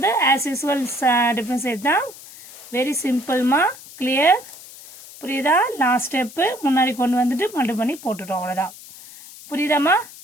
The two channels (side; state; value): left; noise; hiss, 18 dB below the sound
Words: ஆஸ் யூசுவல் டிஃபரன்ஷியேட் தான். வெரி சிம்பிள்மா, கிளியர். புரியுதா? லாஸ்ட் ஸ்டெப் முன்னாடி கொண்டு வந்துட்டு மல்டி பண்ணி போட்டுட்டோம். அவ்வளவுதான். புரியுதாமா?